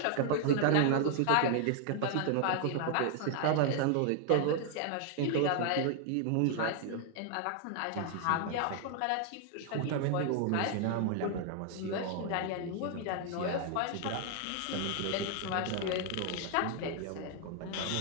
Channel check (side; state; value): both; different; correlation 0.00